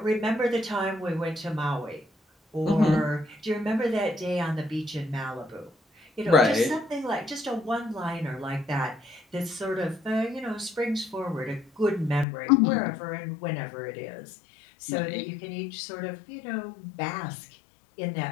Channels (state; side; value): drops out; right; at 12.2 s